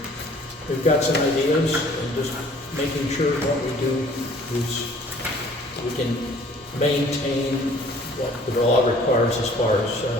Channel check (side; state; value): both; normal; correlation 0.54